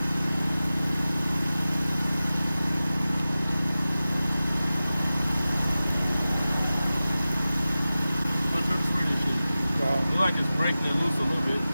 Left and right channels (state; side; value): inverted; both; correlation -0.95